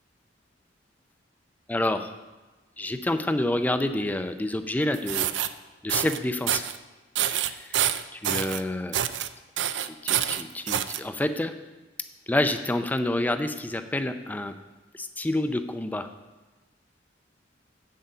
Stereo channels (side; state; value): both; normal; correlation 0.53